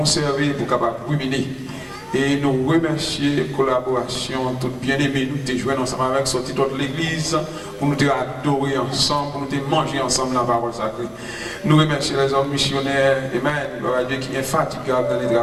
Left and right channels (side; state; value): both; identical; correlation 1.00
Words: pour capable ruminer. Et nous remercions la collaboration, tout bien-aimé, nous te joindre ensemble avec sorti de l'église, pour nous te adorer ensemble, pour nous te manger ensemble la parole sacrée. Nous remercions les hommes missionnaires, Amen, gloire à Dieu qui est infatigable dans le